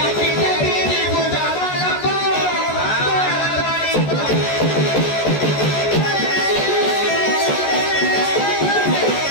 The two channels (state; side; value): late; right; 14 ms